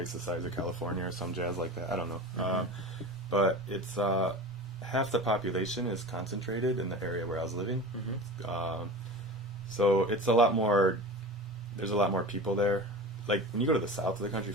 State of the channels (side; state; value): both; normal; correlation 0.33